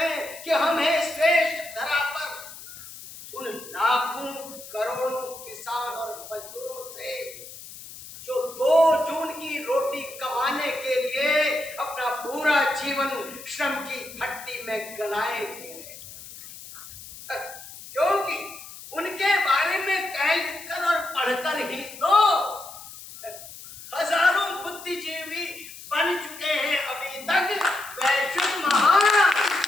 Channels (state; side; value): noise; left; hiss, 15 dB below the sound